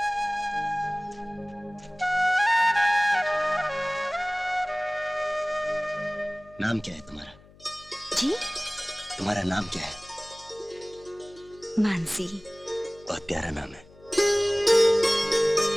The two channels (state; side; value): noise; left; hum, 25 dB below the sound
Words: नाम क्या है तुम्हारा? जी? तुम्हारा नाम क्या है? मानसी। बहुत प्यारा नाम है।